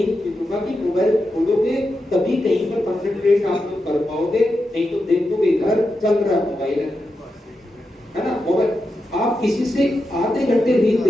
चीजों का कि मोबाइल खोलोगे तभी कहीं पर कंसंट्रेट आप लोग कर पाओगे, नहीं तो देखोगे घर चल रहा मोबाइल है ना। मोबाइल आप किसी से आधे घंटे रील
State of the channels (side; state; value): both; normal; correlation 0.88